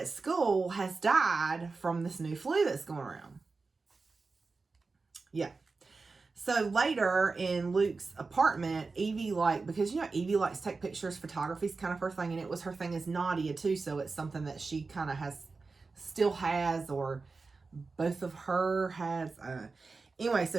school has died from this new flu that's going around. Yeah. So later in Luke's apartment, Evie, like, because, you know, Evie likes to take pictures, photography's kind of her thing, and it was her thing as Nadia too, so it's something that she kind of still has, or both of her has. Anyway,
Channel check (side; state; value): left; quieter; 4.1 dB